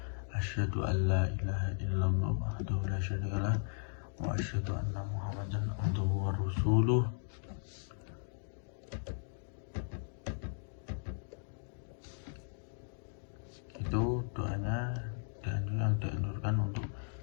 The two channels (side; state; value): right; silent; digital silence